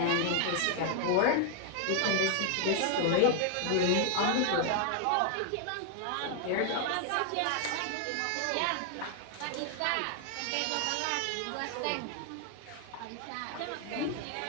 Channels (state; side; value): different; both; correlation 0.00